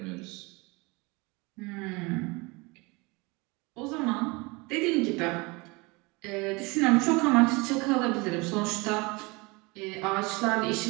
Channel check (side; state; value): left; quieter; 26.1 dB